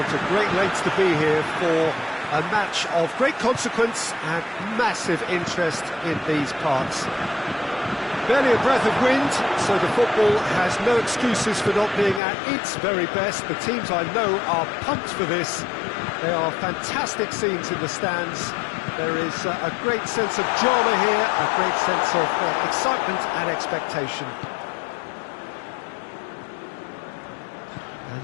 to great lengths to be here for a match of great consequence and massive interest in these parts. Barely a breath of wind, so the football has no excuses for not being at its very best. The teams I know are pumped for this. There are fantastic scenes in the stands. There is a great sense of drama here, a great sense of excitement and expectation.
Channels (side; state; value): right; drops out; at 12.2 s